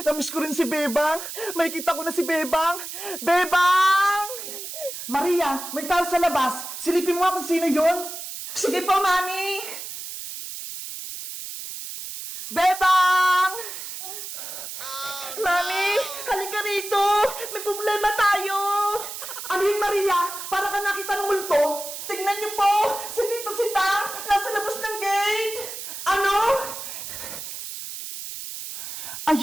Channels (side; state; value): right; noise; hiss, 9 dB below the sound